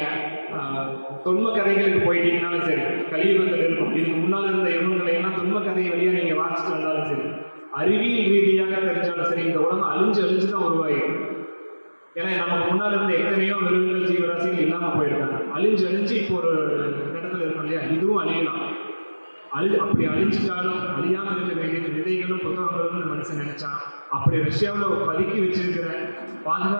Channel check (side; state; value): both; inverted; correlation -1.00